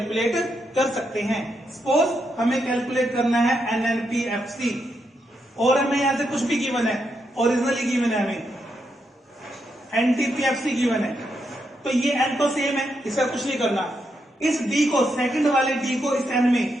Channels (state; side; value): normal; both; correlation 0.81